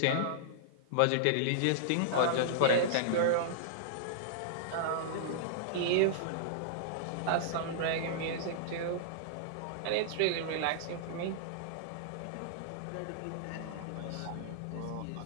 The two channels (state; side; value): different; both; correlation -0.02